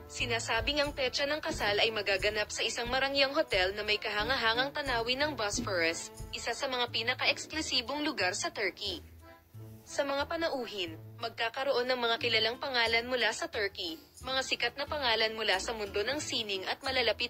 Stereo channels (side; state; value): both; identical; correlation 1.00